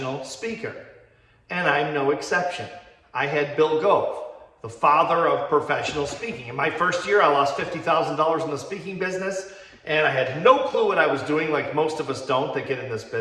speaker. And I'm no exception. I had Bill Gove, the father of professional speaking. In my first year, I lost $50,000 in the speaking business, and I had no clue what I was doing, like most of us don't that get in this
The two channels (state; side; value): identical; both; correlation 1.00